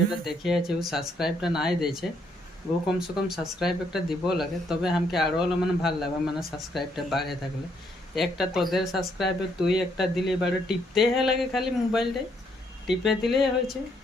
দেখে আছে ও সাবস্ক্রাইবটা নাই দিয়েছে, ও কমসে কম সাবস্ক্রাইব একটা দিব লাগে, তবে আমাকে আরো মানে ভাল লাগবে, মানে সাবস্ক্রাইবটা বাড়ে থাকলে। একটা তোদের সাবস্ক্রাইবে তুই একটা দিলে বাড়ে টিপতে লাগে, খালি মোবাইলটাই টিপে দিলেই হয়েছে।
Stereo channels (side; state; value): both; normal; correlation 0.72